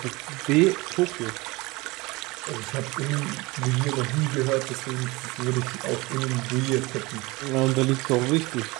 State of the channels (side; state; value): left; quieter; 23.2 dB